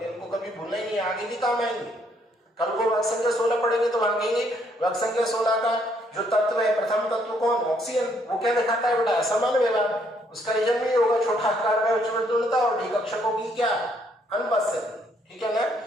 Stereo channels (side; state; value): both; normal; correlation 0.69